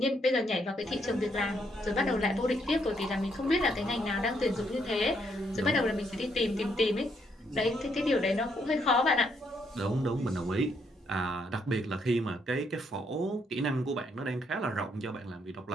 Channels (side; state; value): both; normal; correlation 0.74